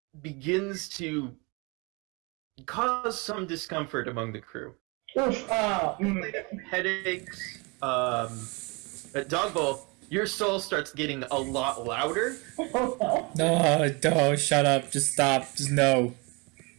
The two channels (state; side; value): quieter; left; 28.9 dB